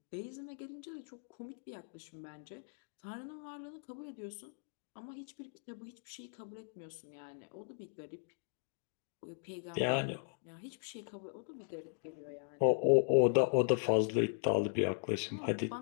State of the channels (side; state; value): right; silent; digital silence